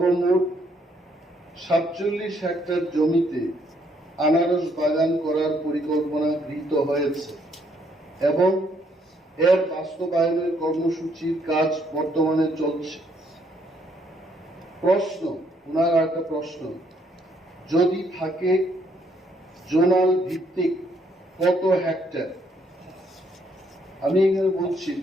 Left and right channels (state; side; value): normal; both; correlation 0.70